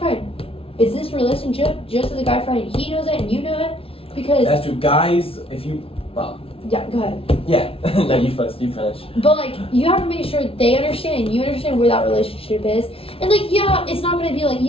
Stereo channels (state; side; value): late; right; 0.27 ms